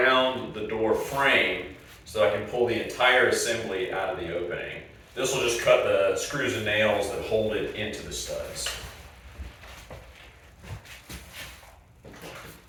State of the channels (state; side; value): identical; both; correlation 1.00